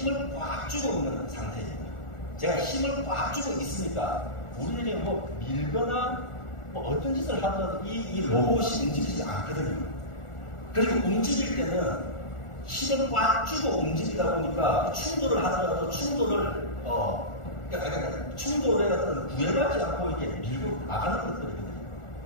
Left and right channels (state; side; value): late; right; 1.4 ms